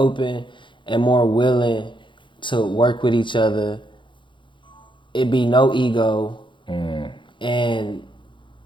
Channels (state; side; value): late; right; 0.23 ms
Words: and more willing to work with each other. It be no ego, and